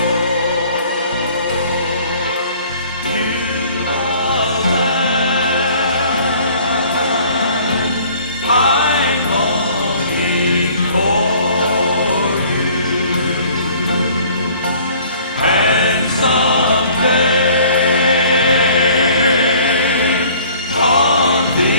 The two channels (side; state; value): both; inverted; correlation -0.53